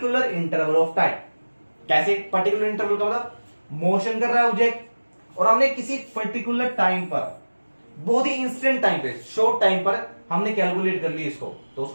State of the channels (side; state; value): both; inverted; correlation -1.00